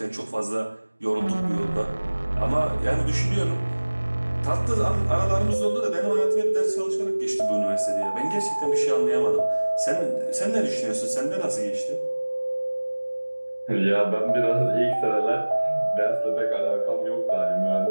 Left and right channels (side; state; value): both; inverted; correlation -1.00